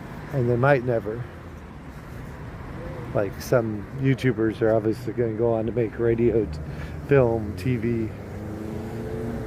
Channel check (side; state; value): both; identical; correlation 1.00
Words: And they might never. Like some YouTubers are obviously going to go on to make radio, film, TV.